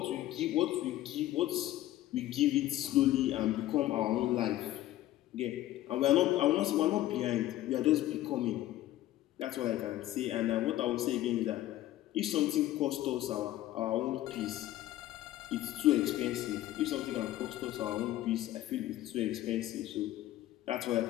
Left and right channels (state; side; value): quieter; right; 14.5 dB